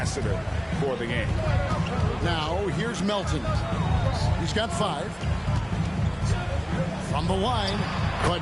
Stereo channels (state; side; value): identical; both; correlation 1.00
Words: for the game. Now, here's Melton. He's got 5. From the line,